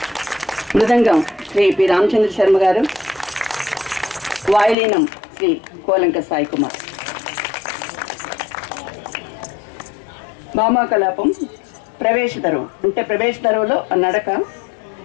మృదంగం శ్రీ పి రామచంద్ర శర్మ గారు, వాయులీనం శ్రీ కోలంక సాయి కుమార్. భామాకలాపం ప్రవేశదరువు అంటే ప్రవేశదరువులో నడక,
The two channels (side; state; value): right; drops out; at 4.8 s